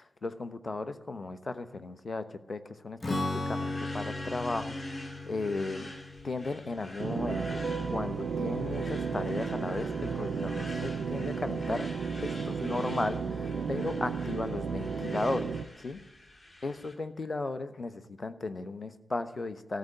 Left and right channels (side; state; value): both; normal; correlation 0.84